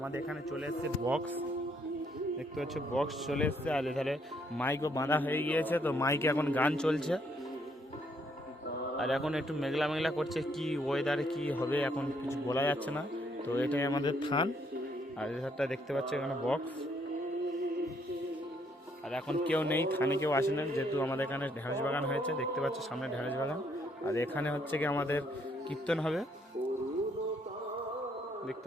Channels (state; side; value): normal; both; correlation 0.70